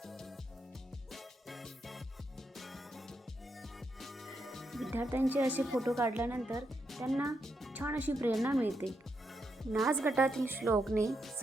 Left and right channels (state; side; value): normal; both; correlation 0.81